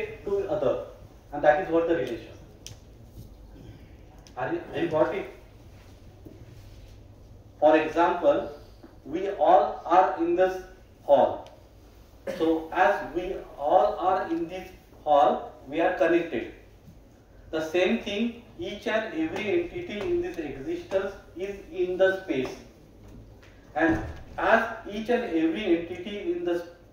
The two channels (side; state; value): both; identical; correlation 1.00